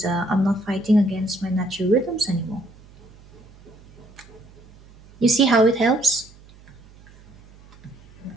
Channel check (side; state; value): right; noise; hum, 24 dB below the sound